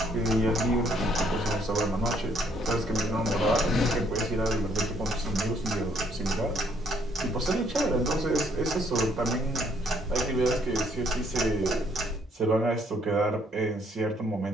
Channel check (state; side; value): normal; both; correlation 0.66